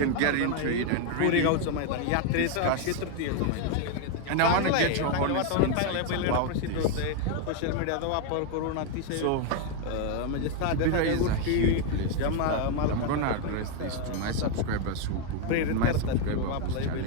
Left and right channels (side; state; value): both; different; correlation 0.01